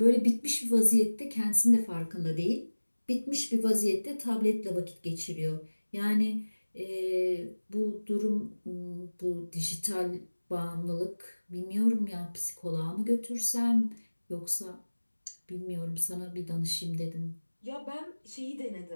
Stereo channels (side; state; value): both; inverted; correlation -1.00